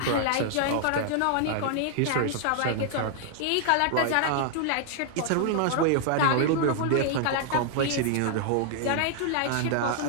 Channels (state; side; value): different; both; correlation 0.00